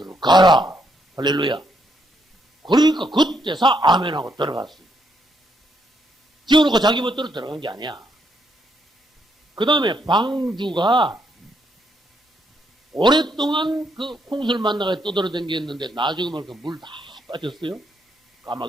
할렐루야. 그러니까 그때서 아멘하고 들어갔어요. 지어놓고 자기 멋대로 들어간 게 아니야. 그 다음에 방주가 오랫동안 그 홍수를 만나가 떠돌아다녔는데 나중에 보니까 물 다 빠졌어요.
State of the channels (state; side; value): normal; both; correlation 0.75